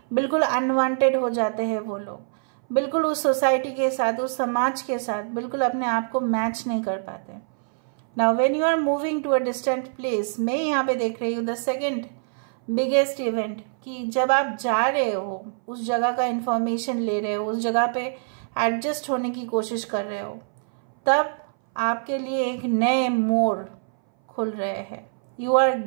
बिल्कुल अनवांटेड हो जाते हैं वो लोग, बिल्कुल उस सोसाइटी के साथ, उस समाज के साथ बिल्कुल अपने आप को मैच नहीं कर पाते। Now when you are moving to a distant place, मैं यहाँ पे देख रही हूँ द सेकेंड बिगेस्ट इवेंट, कि जब आप जा रहे हो, उस जगह का इंफॉर्मेशन ले रहे हो, उस जगह पे एडजस्ट होने की कोशिश कर रहे हो, तब आपके लिए एक नए मोड़ खुल रहे हैं। You are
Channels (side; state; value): left; silent; 60 dB below the other